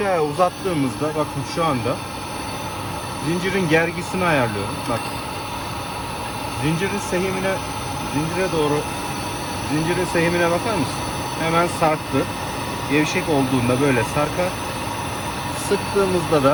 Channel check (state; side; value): identical; both; correlation 1.00